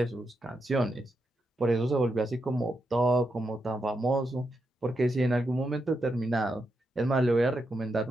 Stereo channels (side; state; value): both; normal; correlation 0.84